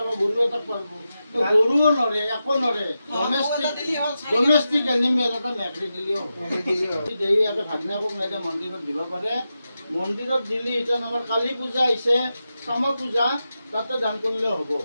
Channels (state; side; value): inverted; both; correlation -0.90